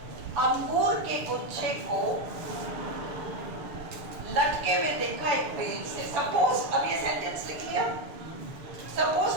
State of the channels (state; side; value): late; left; 6.8 ms